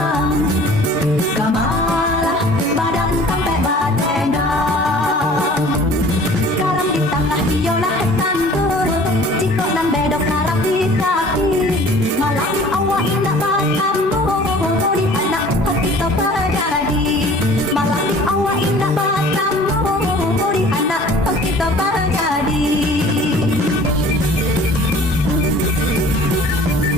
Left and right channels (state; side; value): normal; both; correlation 0.48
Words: kamalah badan sampai batendang. Garam di tengah biolah tandur, cikok dan bedok garam di kaki. Malam awak indah batamu, di anak hati terjadi. Malam awak indah batamu, di anak hati terjadi.